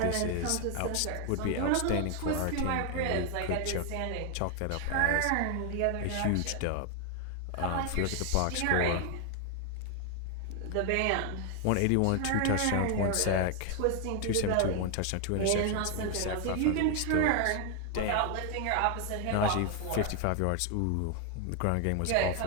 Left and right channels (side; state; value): both; different; correlation 0.01